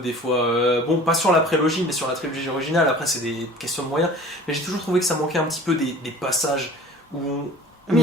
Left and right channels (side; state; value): both; normal; correlation 0.43